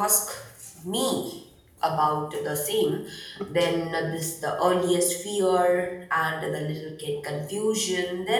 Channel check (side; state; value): both; identical; correlation 1.00